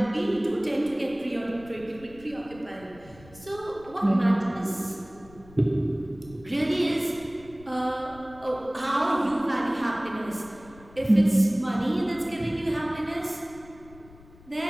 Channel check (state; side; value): noise; left; rumble, 22 dB below the sound